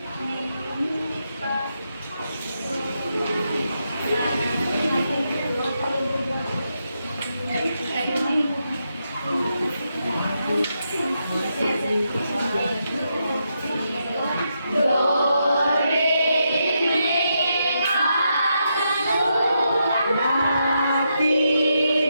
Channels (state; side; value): inverted; both; correlation -0.83